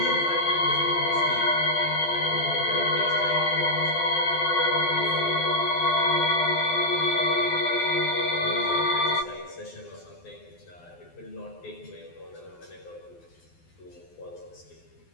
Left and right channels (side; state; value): right; late; 12 ms